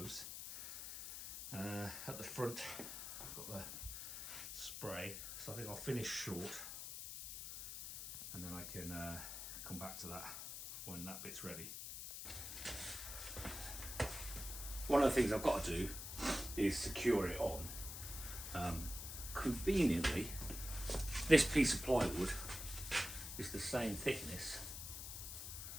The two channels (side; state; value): left; noise; hiss, 7 dB below the sound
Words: At the front I've got the spray, so I think I'll finish short and then I can come back to that when that bit's ready. One of the things I've got to do is secure it on. Conveniently, this piece of plywood is the same thickness